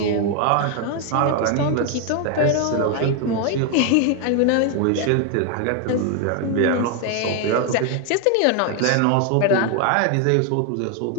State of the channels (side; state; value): both; different; correlation 0.01